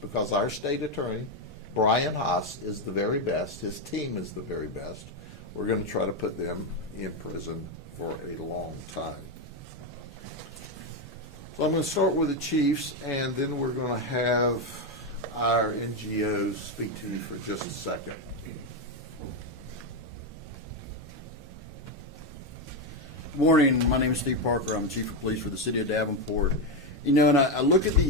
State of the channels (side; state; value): both; normal; correlation 0.07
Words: because our state attorney, Brian Haas, is the very best. His team is the very best. We're going to try to put them in prison for a long time. So I'm going to start with the chiefs, and then we're going to have our NGOs speak to you for just a second. Good morning. My name is Steve Parker. I'm the Chief of Police for the City of Davenport. You know, and I look at